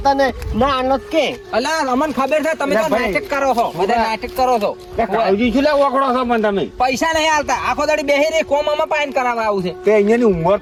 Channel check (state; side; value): identical; both; correlation 1.00